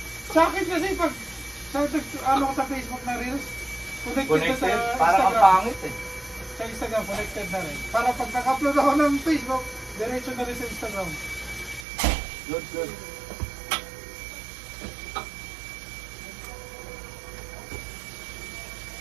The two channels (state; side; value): drops out; left; at 11.9 s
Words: Sa akin kasi pag ano ko sa Facebook na Reels, connected Connected. na sa Parang ang Instagram. pangit eh. Sa Instagram, connected na rin. Para pag naka-upload ako ng Facebook, diretso na rin sa Instagram. Good, good.